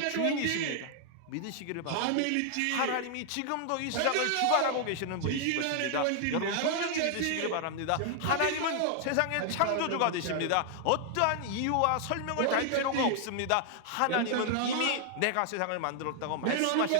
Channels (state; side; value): different; both; correlation 0.00